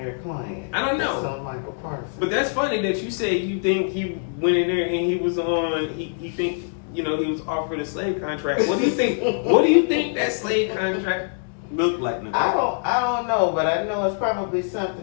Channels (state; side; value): silent; right; digital silence